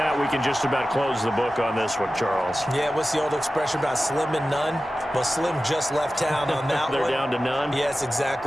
we can just about close the book on this one, Charles. Yeah, what's the old expression about slim and none? Well, Slim just left town on that one. They're down to none? Yes,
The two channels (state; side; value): normal; both; correlation 0.95